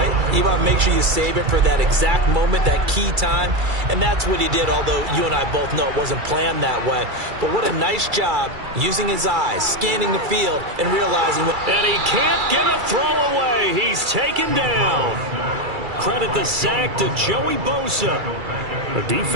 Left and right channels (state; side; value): late; left; 2.3 ms